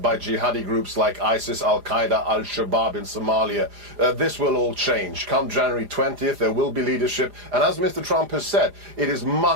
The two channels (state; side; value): late; left; 4.9 ms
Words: by jihadi groups like ISIS, Al-Qaeda, Al-Shabaab in Somalia. This will all change. Come January 20th, there will be leadership. And as Mr. Trump has said, it is